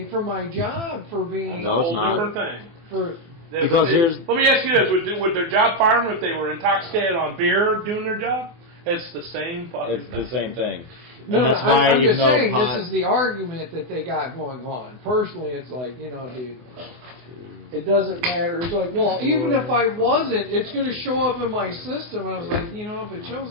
from my job for being No, it's Whole not. different thing. for. Because here's- Let me ask you this: would their job fire them if they were intoxicated on beer doing their job? It's the same fucking It's thing. the same thing. No, And that's no, why I'm even just though saying pot, this is the argument that they got going on. Personally, it's like, dude, it doesn't matter. It's like, well, even if I wasn't, it's going to show up in my system. I was like, if it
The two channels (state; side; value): late; left; 24 ms